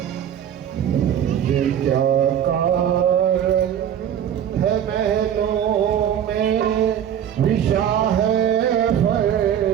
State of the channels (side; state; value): left; quieter; 9.6 dB